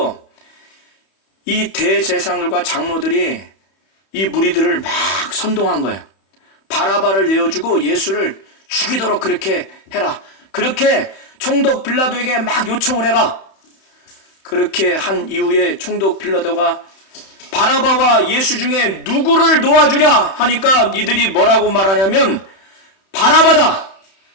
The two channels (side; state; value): right; late; 31 ms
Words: 이 대제사장들과 장로들이 이 무리들을 막 선동한 거예요. 바라바를 내어주고 예수를 죽이도록 그렇게 해라. 그렇게 총독 빌라도에게 막 요청을 해라. 그렇게 한 이후에 총독 빌라도가 바라바와 예수 중에 누구를 놓아주랴 하니까 이들이 뭐라고 말하냐면 바라바다.